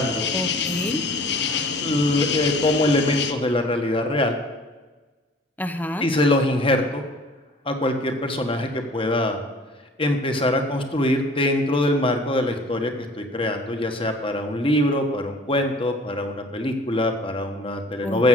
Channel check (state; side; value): normal; both; correlation 0.49